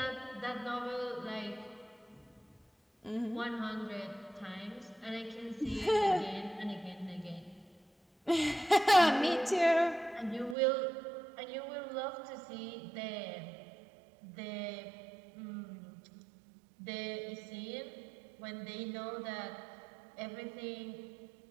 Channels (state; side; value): drops out; left; at 10.6 s